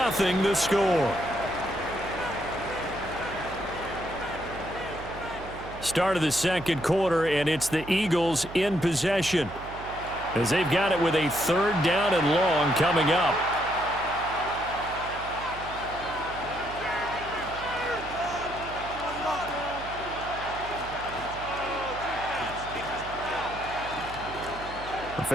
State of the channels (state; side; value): noise; right; hum, 13 dB below the sound